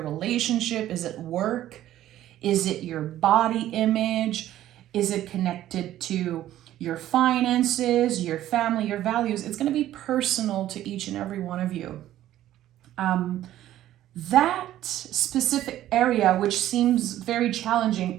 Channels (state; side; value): quieter; left; 13.1 dB